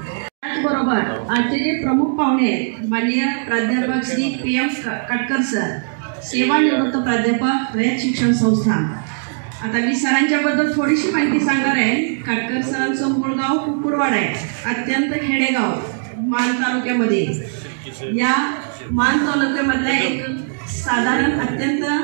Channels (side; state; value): left; silent; digital silence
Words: त्याचबरोबर आजचे जे प्रमुख पाहुणे आहेत माननीय प्राध्यापक श्री PM काटकर सर सेवानिवृत्त प्राध्यापक रयत शिक्षण संस्था. आता मी सरांच्याबद्दल थोडीशी माहिती सांगणार आहे. काटकर सरांचं मूळ गाव कुकुडवाड आहे, अत्यंत खेडेगाव मान तालुक्यामध्ये. या मान तालुक्यामधल्या एक साधारण अत्यंत